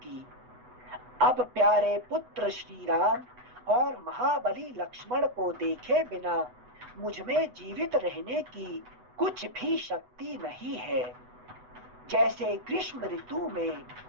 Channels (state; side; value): late; left; 8.1 ms